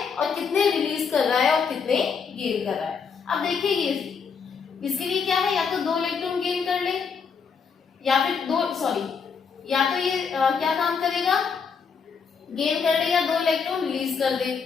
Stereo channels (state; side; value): quieter; right; 5.9 dB